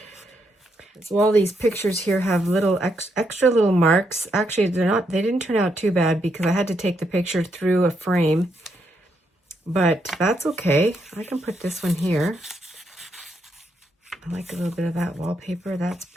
So all these pictures here have little extra little marks. Actually, they didn't turn out too bad because I had to take the picture through a frame. But that's okay. I can put this one here. I like a little bit of that wallpaper. That's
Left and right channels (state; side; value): normal; both; correlation 0.78